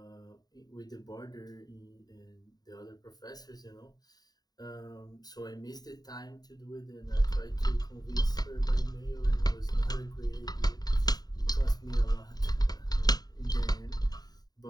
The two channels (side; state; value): right; late; 0.19 ms